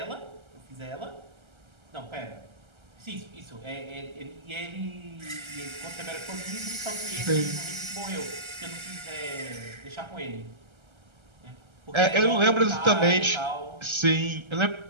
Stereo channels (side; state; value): left; late; 1.3 ms